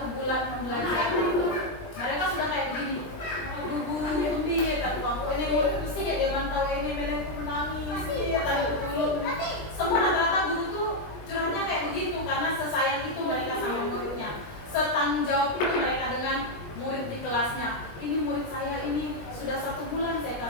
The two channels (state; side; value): late; right; 20 ms